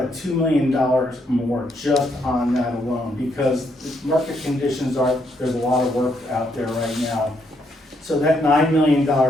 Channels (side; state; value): both; normal; correlation 0.75